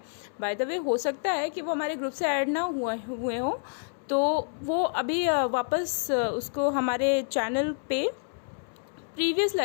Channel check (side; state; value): right; silent; 59 dB below the other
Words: बाय द वे हो सकता है कि वो हमारे ग्रुप से ऐड ना हुए हों, तो वो अभी वापस उसको हमारे चैनल पे प्रीवियस